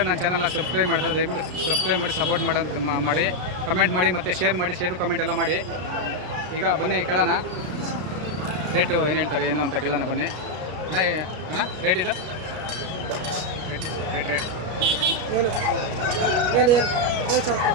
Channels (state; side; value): late; left; 33 ms